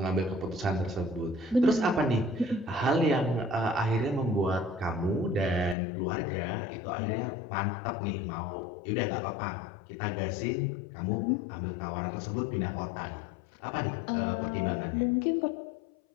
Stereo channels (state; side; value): drops out; right; at 5.8 s